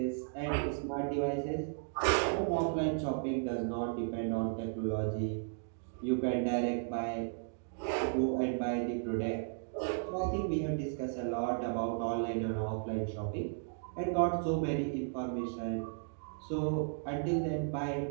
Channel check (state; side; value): silent; left; digital silence